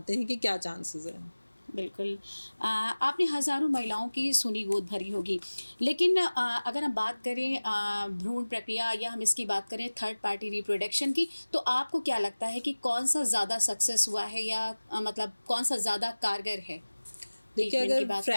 हैं कि क्या चांसेस हैं। बिल्कुल। आपने हज़ारों महिलाओं की सुनी गोद भरी होगी, लेकिन अगर हम बात करें भ्रूण प्रक्रिया या हम इसकी बात करें थर्ड पार्टी रिप्रोडक्शन की, तो आपको क्या लगता है कि कौन सा ज़्यादा सक्सेस हुआ है या मतलब कौन सा ज़्यादा कारगर है? देखिए, ट्रीटमेंट की अगर बात,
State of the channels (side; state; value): both; inverted; correlation -1.00